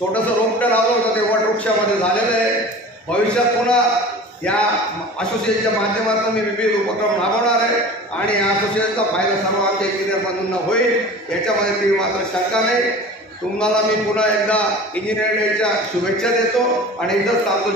रोपटं लावलं होतं ते वटवृक्षामध्ये झालेलं आहे. भविष्यात पुन्हा या असोसिएशनच्या माध्यमातून मी विविध उपक्रम राबवणार आहे आणि या असोसिएशनचा फायदा सर्व आमच्या इंजिनियर बंधूंना होईल याच्यामध्ये ती मात्र शंका नाही. तुम्हाला मी पुन्हा एकदा इंजिनिअरिंग डेच्या शुभेच्छा देतो आणि इथंच थांबतो.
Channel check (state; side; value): normal; both; correlation 0.39